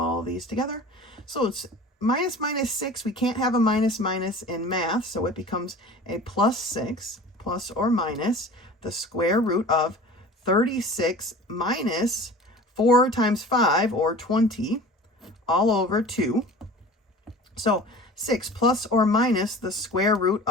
of these together. So it's minus 6, we can't have a minus in math, so it becomes a plus 6, plus or minus the square root of 36 minus 4 times 5, or 20, all over 2. So 6 plus or minus the square root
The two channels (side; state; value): both; normal; correlation 0.41